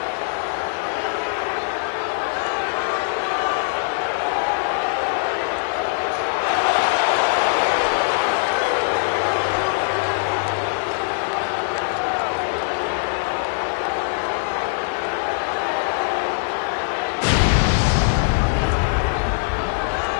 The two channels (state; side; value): silent; right; digital silence